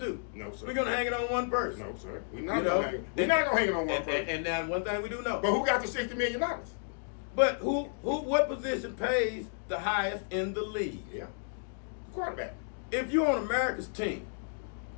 do. No, sir. We're going to hang it on one person. No, sir. We're not going to hang it on one person. And now one thing we do know. But who got the $60 million? But what position pays the highest in the league? Yeah. The quarterback. If you're on America's team,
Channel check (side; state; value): right; silent; digital silence